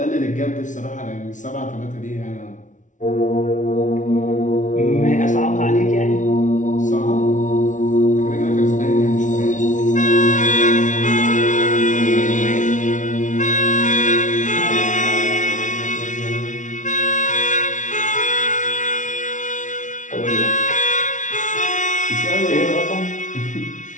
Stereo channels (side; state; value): right; late; 0.37 ms